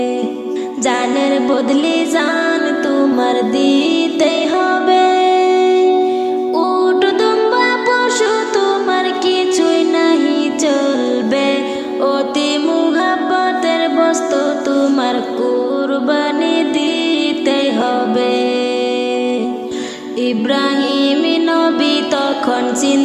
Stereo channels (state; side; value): identical; both; correlation 1.00